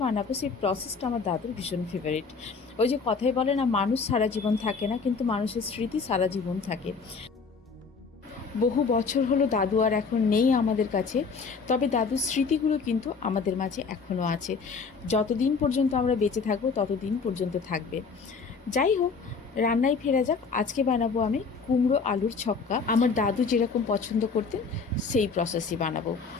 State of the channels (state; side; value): quieter; right; 5.0 dB